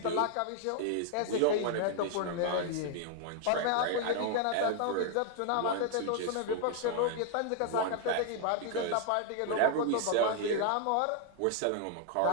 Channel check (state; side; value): different; both; correlation 0.00